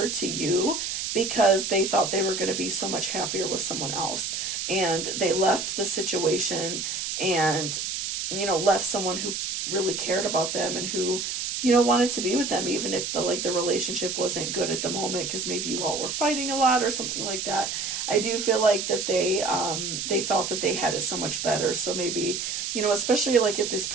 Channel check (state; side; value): noise; right; hiss, 3 dB below the sound